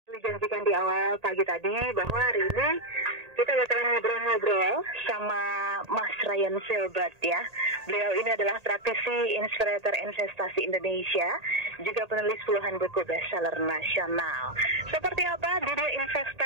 Dijanjikan di awal pagi tadi bahwa hari ini kita bakalan ngobrol-ngobrol sama Mas Ryan Filbert ya. Beliau ini adalah praktisi inspirator investasi Indonesia, juga penulis puluhan buku bestseller nasional. Seperti apa dunia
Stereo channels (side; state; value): left; late; 1.8 ms